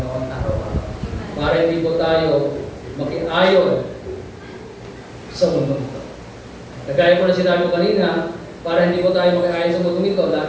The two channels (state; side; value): identical; both; correlation 1.00